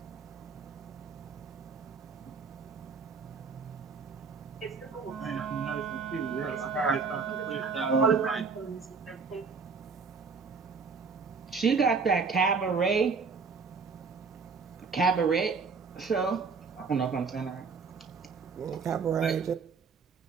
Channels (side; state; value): left; quieter; 5.1 dB